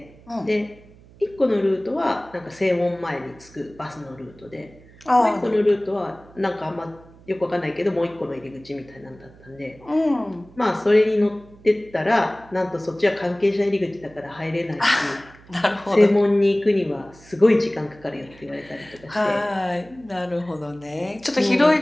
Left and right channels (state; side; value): noise; right; hum, 24 dB below the sound